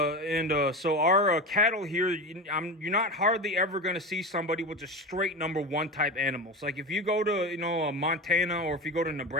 our cattle here, you're not hardly ever going to see somebody with just straight number one type animals. Like if you go to Montana, or if you go to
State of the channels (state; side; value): normal; both; correlation 0.25